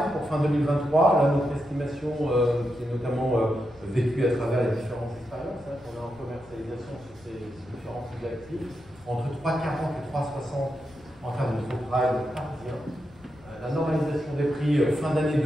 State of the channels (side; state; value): left; noise; rumble, 26 dB below the sound